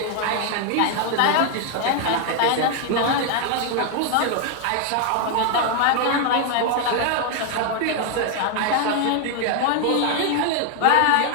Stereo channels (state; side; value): different; both; correlation 0.00